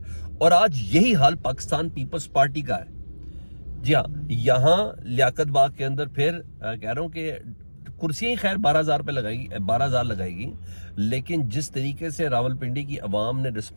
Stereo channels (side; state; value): both; inverted; correlation -1.00